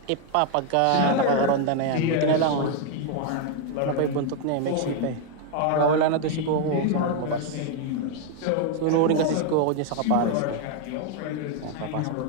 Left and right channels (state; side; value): different; both; correlation 0.00